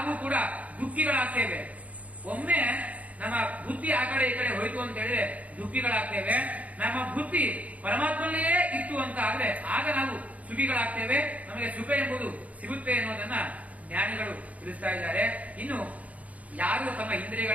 ಕೂಡ ದುಃಖಿಗಳಾಗ್ತೇವೆ. ಒಮ್ಮೆ ನಮ್ಮ ಬುದ್ಧಿ ಆ ಕಡೆ ಈ ಕಡೆ ಹೋಯ್ತು ಅಂತ ಹೇಳಿದ್ರೆ ದುಃಖಿಗಳಾಗ್ತೇವೆ. ನಮ್ಮ ಬುದ್ಧಿ ಪರಮಾತ್ಮನಲ್ಲೇ ಇತ್ತು ಅಂತ ಆದ್ರೆ ಆಗ ನಾವು ಸುಖಿಗಳಾಗ್ತೇವೆ. ನಮಗೆ ಸುಖ ಎಂಬುದು ಸಿಗುತ್ತೆ ಅನ್ನೋದನ್ನ ಜ್ಞಾನಿಗಳು ತಿಳಿಸ್ತಾ ಇದ್ದಾರೆ. ಇನ್ನು ಯಾರು ತಮ್ಮ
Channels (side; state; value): left; late; 0.070 ms